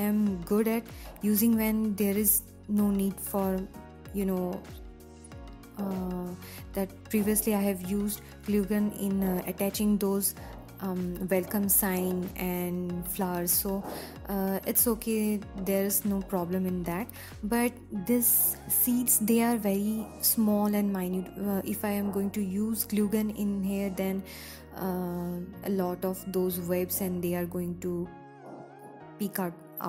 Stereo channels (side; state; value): both; identical; correlation 1.00